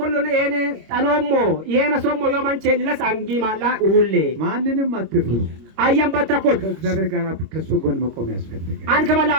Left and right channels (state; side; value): late; left; 26 ms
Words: እኔ ጣኖሞ ይሄነ ሶሞ yomanche ለስ አንጊ ማላ ሁሌ ማንንም አትፍሩ። አየን በተኮት ከእግዚአብሔር ጋር ከሱ ጎን መቆም ያስፈልጋል። አንከ